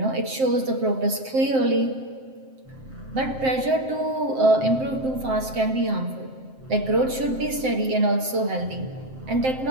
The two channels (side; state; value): left; late; 7.6 ms